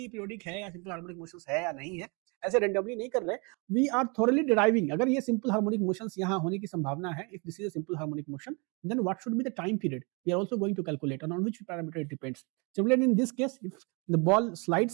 पीरियोडिक है या सिंपल हार्मोनिक मोशंस है या नहीं है, ऐसे रेंडमली नहीं कर रहे। वी आर थोरली डिराइविंग, अगर ये सिंपल हार्मोनिक मोशंस यहाँ होने की संभावना है, if this is a simple harmonic motion, then what should be the time period we are also going to calculate, and on which parameter it depends. Similarly, in this case, if the ball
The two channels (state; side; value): quieter; left; 31.7 dB